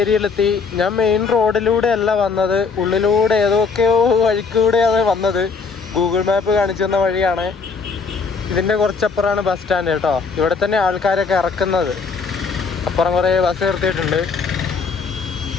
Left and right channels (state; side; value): quieter; right; 5.0 dB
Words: ഞാൻ മെയിൻ റോഡിലൂടെ അല്ല വന്നത്, ഉള്ളിലൂടെ ഏതൊക്കെയോ വഴിക്കൂടെയാണ് വന്നത്. ഗൂഗിൾ മാപ്പ് കാണിച്ചു തന്ന വഴിയാണ്. ഇതിൻ്റെ കുറച്ചപ്പുറമാണ് ബസ് സ്റ്റാൻഡ് കേട്ടോ. ഇവിടെ തന്നെ ആൾക്കാരൊക്കെ ഇറക്കുന്നത്. അപ്പുറം കുറേ ബസ് നിർത്തിയിട്ടുണ്ട്.